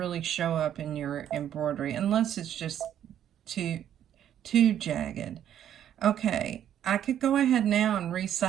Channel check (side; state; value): left; quieter; 10.3 dB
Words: show up in your embroidery unless it's just too jagged. Okay, I could go ahead now and